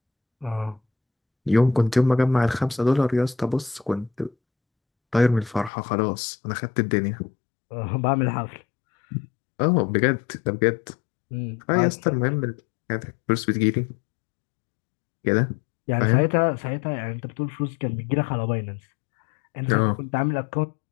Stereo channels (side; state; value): right; drops out; at 5.7 s